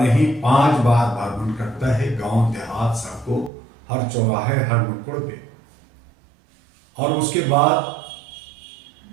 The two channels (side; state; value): left; drops out; at 3.5 s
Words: नहीं 5 बार भ्रमण करता है, गांव देहात, सड़कों, हर चौराहे, हर नुक्कड़ पे। और उसके बाद